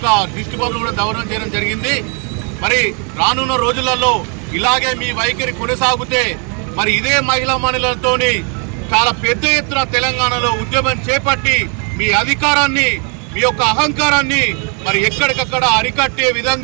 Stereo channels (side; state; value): left; quieter; 37.6 dB